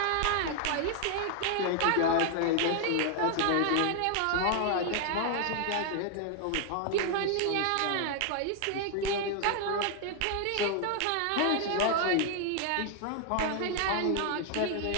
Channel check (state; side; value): different; both; correlation 0.00